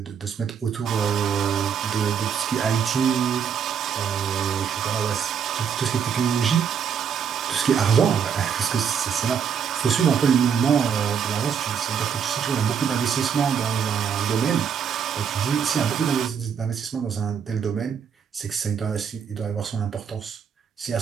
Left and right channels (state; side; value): quieter; left; 7.4 dB